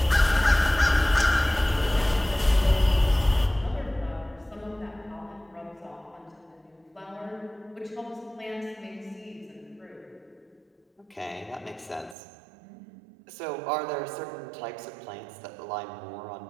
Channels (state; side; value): drops out; left; at 12.2 s